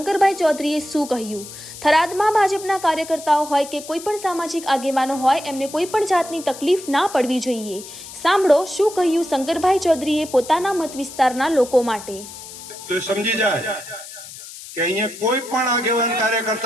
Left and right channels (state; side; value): noise; left; hiss, 14 dB below the sound